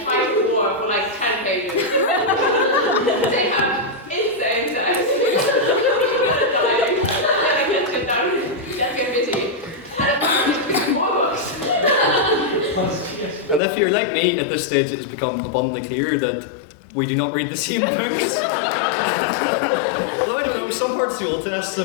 fight a war for like 10 pages. They have insane sex. Dying. Let's get busy. And then more books. and if you're like me, at this stage it has become abundantly clear that we do not read the same books. Although I don't know, some parts of the Old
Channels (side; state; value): right; drops out; at 13.6 s